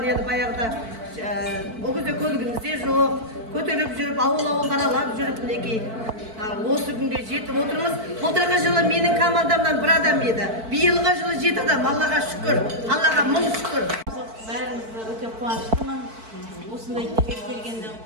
баяғыда ол кезде көлігімізде жоқ, көтеріп жүріп, ауыл қаралап жүріп, мінекей осы күнге жетіп отырмыз. Былтырғы жылы менің командамдан бір адам еді, биылғы жылы 7 адам. Аллаға шүкір, Аллаға мың шүкір. Бәріміз өте қуаныштымын. Осындай жерге келгенде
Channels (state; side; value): late; left; 4.5 ms